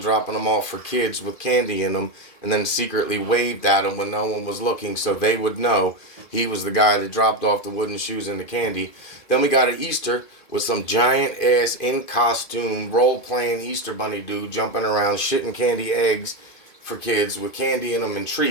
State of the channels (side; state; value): right; late; 2.4 ms